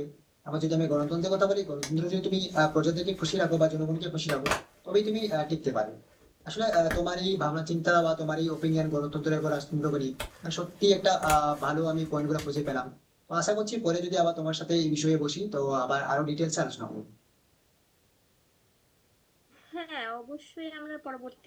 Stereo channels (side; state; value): both; identical; correlation 1.00